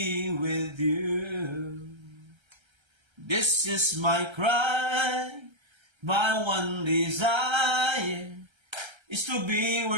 with you. This is my cry, my one desire is to be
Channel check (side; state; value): left; late; 1.3 ms